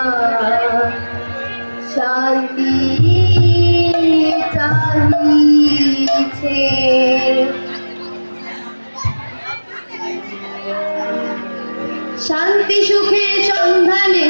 শান্তি চাহিছে। শান্তি সুখের সন্ধানে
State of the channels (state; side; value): inverted; both; correlation -1.00